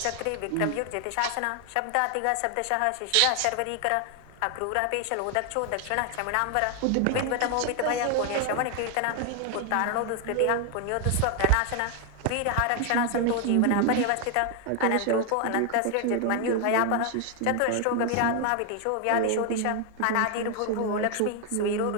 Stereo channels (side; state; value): both; different; correlation 0.01